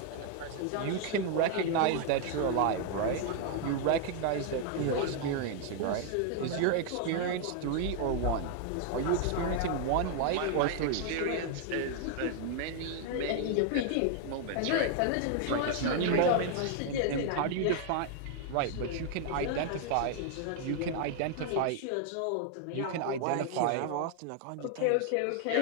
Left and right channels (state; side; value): different; both; correlation 0.00